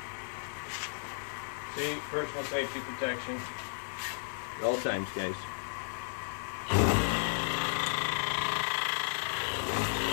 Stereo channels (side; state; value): right; silent; 55 dB below the other